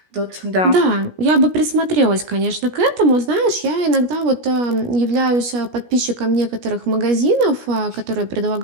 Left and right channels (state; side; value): late; left; 17 ms